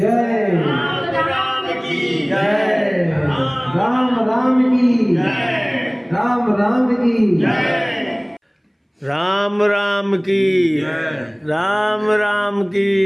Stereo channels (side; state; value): both; identical; correlation 1.00